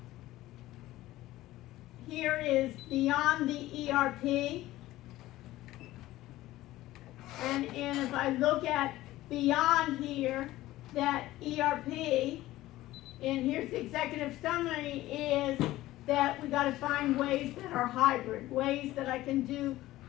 Here is beyond the ERP. And if I look at beyond here, that ERP, and here's the executive summary, is that we got to find ways that are hybrid, ways that I can do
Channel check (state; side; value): quieter; right; 16.3 dB